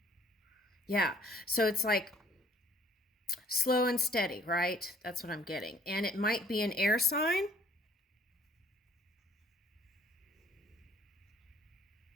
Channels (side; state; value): both; normal; correlation 0.59